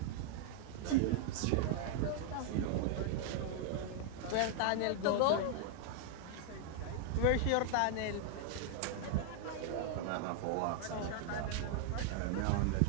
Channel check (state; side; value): different; both; correlation 0.00